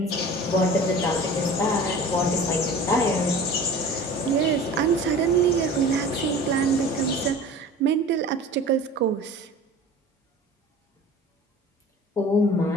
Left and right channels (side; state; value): both; normal; correlation 0.40